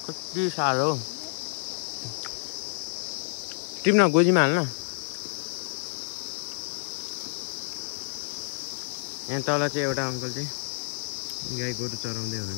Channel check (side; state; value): right; silent; 59 dB below the other